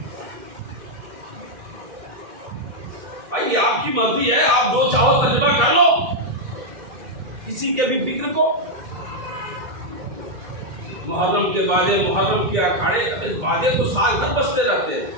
بھائی آپ کی مرضی ہے، آپ جو چاہو ترجمہ کر لو، کسی کے بھی فکر کو۔ محرم کے بازے، محرم کے اکھاڑے، بازے تو سال بھر بجتے رہتے ہیں۔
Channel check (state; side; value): late; left; 2.2 ms